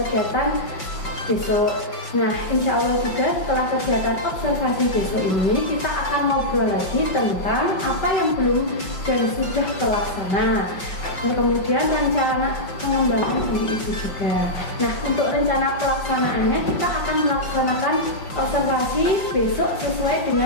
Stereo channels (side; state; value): right; late; 5.3 ms